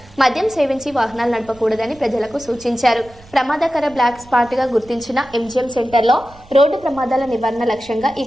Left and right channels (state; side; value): noise; right; rumble, 24 dB below the sound